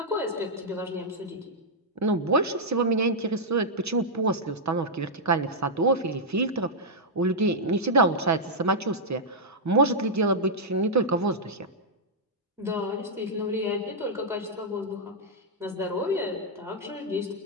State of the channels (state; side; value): normal; both; correlation -0.07